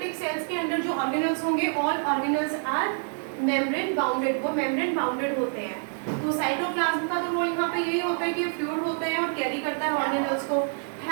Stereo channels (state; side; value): silent; left; 60 dB below the other